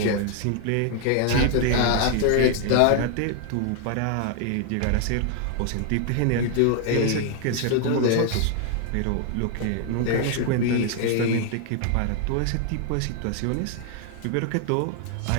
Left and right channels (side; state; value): both; different; correlation 0.00